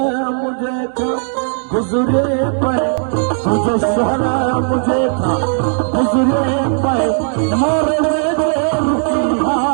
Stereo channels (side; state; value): left; silent; digital silence